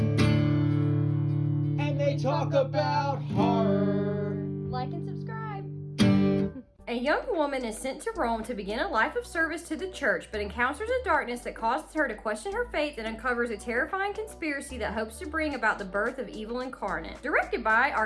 And they talk about horror. Like and subscribe. A young woman is sent to Rome to begin a life of service to the church, but encounters a darkness that causes her to question her faith and uncovers a terrifying conspiracy that hopes to bring about the birth of evil incarnate. Directed by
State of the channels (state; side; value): identical; both; correlation 1.00